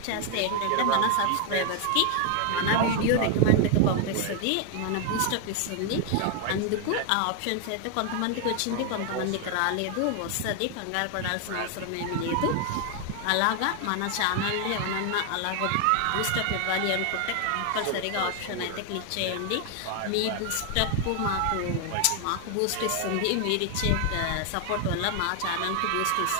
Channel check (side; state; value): both; different; correlation 0.00